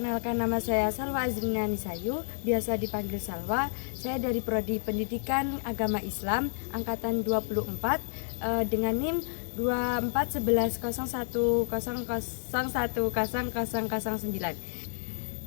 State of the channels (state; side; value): silent; right; 58 dB below the other